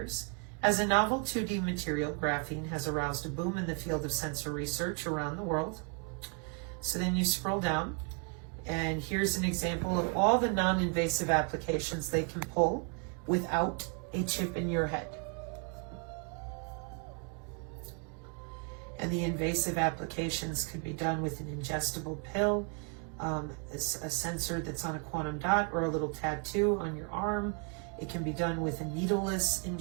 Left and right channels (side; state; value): left; quieter; 36.7 dB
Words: As a novel 2D material, graphene has aroused a boom in the field of sensor research around the world. So then you scroll down, and here's an example of all the non-invasive applications they can pull without a chip in your head. And the invasive applications can be done with an ingestible pill, a sensor that's on a quantum dot, or a little tattoo on your arm. It can be done with a needleless